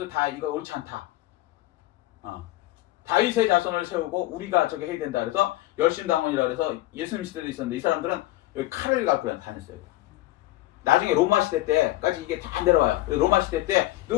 다 이거 옳지 않다. 다윗의 자손을 세우고 우리가 저게 해야 된다 그래서 열심당원이라 그래서 예수님 시대도 있었는데 이 사람들은 여기 칼을 갖고 다녔어요. 나중에 로마 시대 때까지 이게 다 내려와요. 로마 시대 때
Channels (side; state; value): right; quieter; 16.9 dB